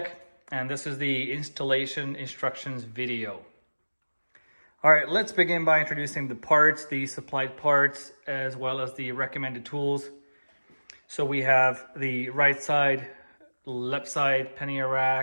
and this is the installation instructions video. All right, let's begin by introducing the parts, the supplied parts, as well as the recommended tools. So we have the right side, left side Pannier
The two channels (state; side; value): inverted; both; correlation -1.00